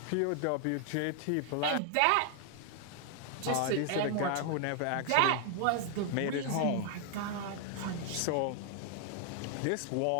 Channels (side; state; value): both; different; correlation 0.00